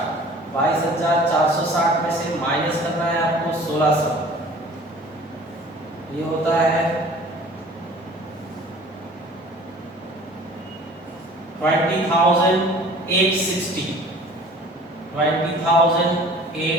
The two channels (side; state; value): both; normal; correlation 0.48